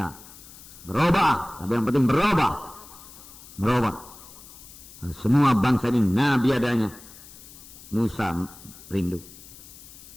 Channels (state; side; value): noise; left; hiss, 19 dB below the sound